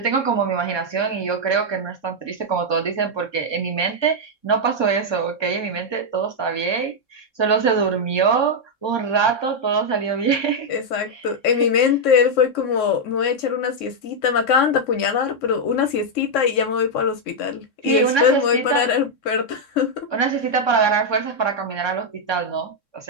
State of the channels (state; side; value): late; right; 3.6 ms